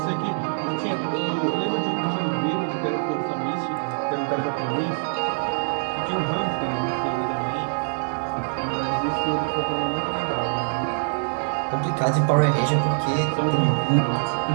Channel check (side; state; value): left; silent; digital silence